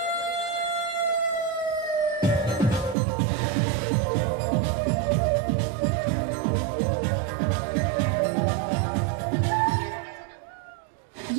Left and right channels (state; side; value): drops out; left; at 3.0 s